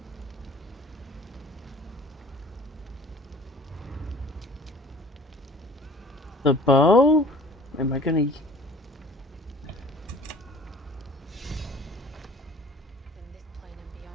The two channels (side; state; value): both; normal; correlation 0.48